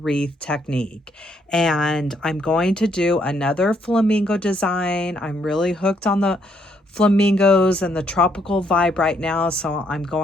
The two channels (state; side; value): normal; both; correlation 0.71